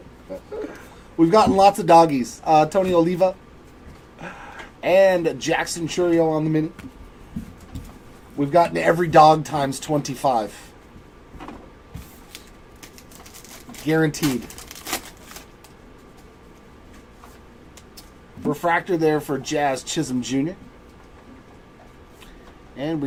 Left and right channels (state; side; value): identical; both; correlation 1.00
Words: We've gotten lots of doggies. Tony Oliva and Jackson Churio on the mini. We've gotten every dog times 25. Guaranteed. Refractor there for Jazz Chisholm Jr. And